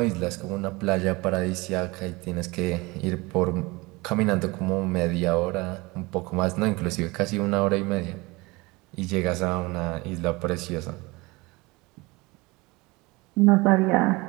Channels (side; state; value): left; quieter; 23.8 dB